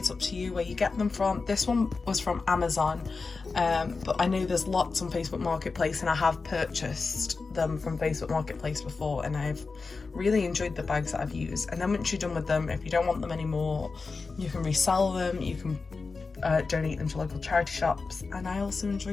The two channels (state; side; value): quieter; right; 4.3 dB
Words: up to you where you get them from. This one was from Amazon, but I know there's lots on Facebook Marketplace, and I have purchased them from Facebook Marketplace before, and I've really enjoyed the bags that I've used. And then once you're done with them, if you don't want them anymore, you can resell them, you can donate them to local charity shops. And I also